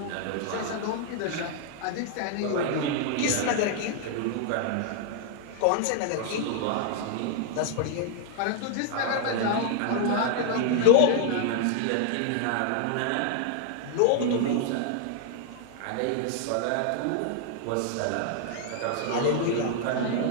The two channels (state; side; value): different; both; correlation 0.00